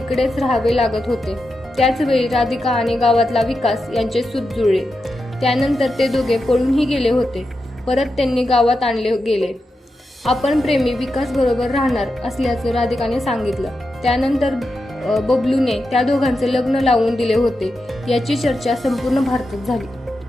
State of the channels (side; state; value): both; normal; correlation 0.89